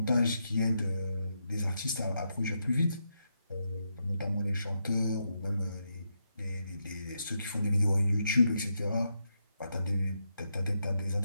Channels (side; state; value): both; inverted; correlation -0.83